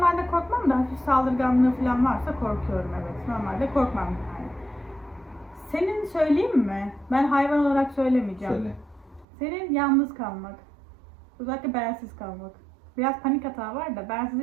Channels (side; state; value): left; drops out; at 9.2 s